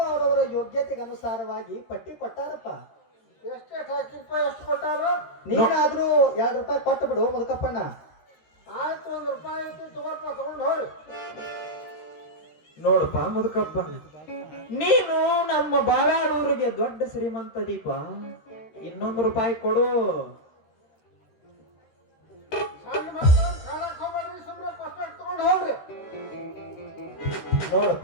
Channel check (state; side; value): late; right; 13 ms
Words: ಅವರವರ ಯೋಗ್ಯತೆಗೆ ಅನುಸಾರವಾಗಿ ಪಟ್ಟಿ ಕೊಟ್ಟಾರಪ್ಪ. ಎಷ್ಟೆಷ್ಟು ಹಾಕಿಲ್ಪ ಎಷ್ಟು ಕೊಟ್ಟಾರು? ನೀನಾದ್ರೂ ₹2 ಕೊಟ್ಟು ಬಿಡು ಮುದುಕಪ್ಪಣ್ಣ. ಆಯ್ತು ₹1 ಐತಿ ತಗೋಲ್ಪ ತಗೊಂಡು ಹೋಗಿ. ನೋಡಪ್ಪ ಮುದುಕಪ್ಪ ನೀನು ನಮ್ಮ ಬಾವ್ಯಾಳೂರಿಗೆ ದೊಡ್ಡ ಶ್ರೀಮಂತ ದೀಪ. ₹1 ಕೊಡು. ಸಣ್ಣ ಮಕ್ಕಳು ಕಾಣಕ್ ಹೋಗ್ಬೇಡ್ರಿ, ಸುಮ್ಮನೆ ಪಸ್ಪೆಟ್ ತಗೊಂಡು ಹೋಗ್ರಿ.